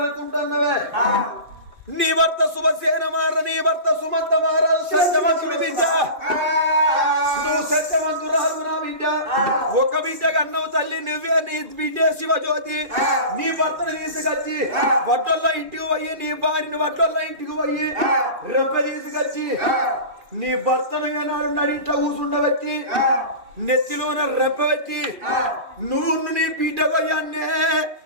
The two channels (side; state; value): left; late; 2.4 ms